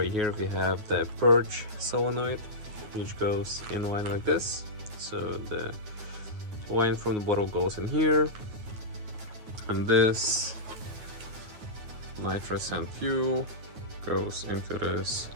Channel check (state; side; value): late; left; 9.5 ms